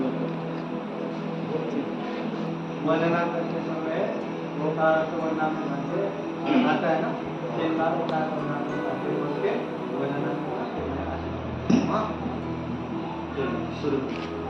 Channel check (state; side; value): identical; both; correlation 1.00